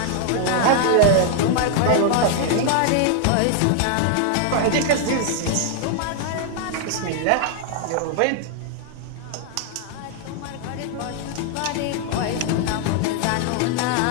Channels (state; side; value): different; both; correlation 0.00